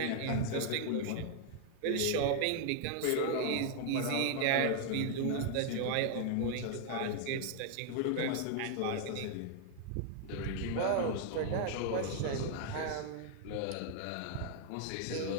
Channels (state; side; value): different; both; correlation 0.00